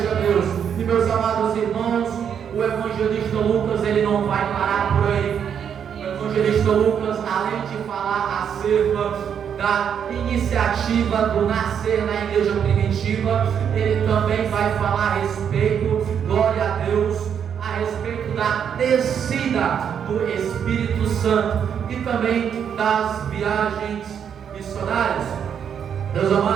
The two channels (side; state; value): left; quieter; 8.1 dB